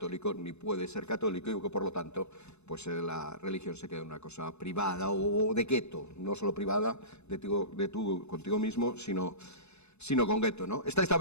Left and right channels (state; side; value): late; right; 0.81 ms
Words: ni puede ser católico y que, por lo tanto, pues la religión se queda en una cosa privada o de gueto, no solo privada contigo mismo, sino sino con gueto, ¿no? Esta